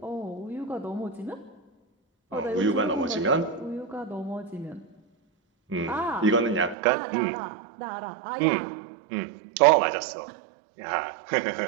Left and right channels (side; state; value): left; drops out; at 6.8 s